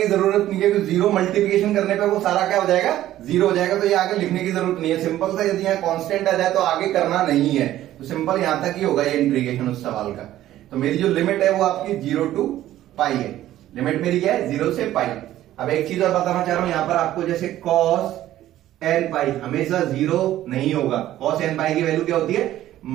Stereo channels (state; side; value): quieter; left; 13.6 dB